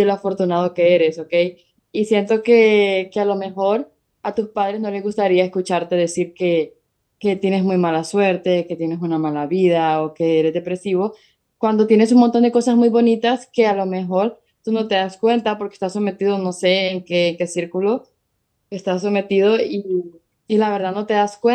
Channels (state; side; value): identical; both; correlation 1.00